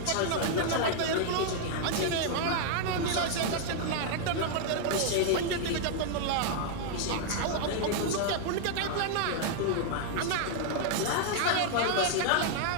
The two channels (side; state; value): both; different; correlation 0.00